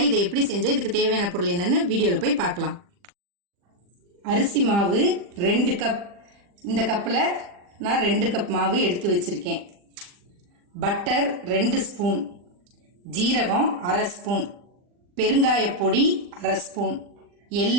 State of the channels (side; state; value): left; late; 40 ms